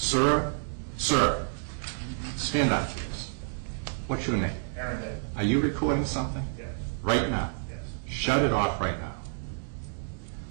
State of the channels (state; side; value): silent; left; digital silence